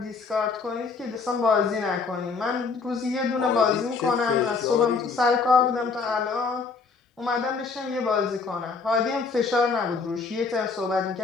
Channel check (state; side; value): quieter; right; 4.7 dB